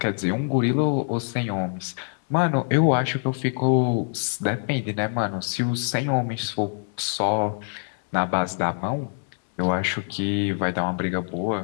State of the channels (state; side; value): silent; right; 59 dB below the other